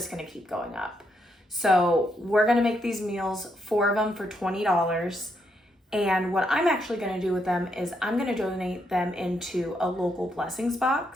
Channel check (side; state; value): both; normal; correlation 0.78